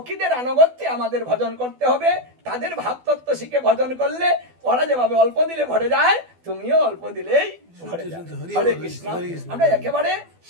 আনুগত্যে আমাদের ভজন করতে হবে। তাদের ভাব তত্ত্ব শিখে ভজন করলে ওরা যেভাবে অল্প দিলে ভরে যায়, তুমিও অল্প দিলেই ভরে যাবে। হরে কৃষ্ণ। আমরা একেবারে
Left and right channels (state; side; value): late; left; 12 ms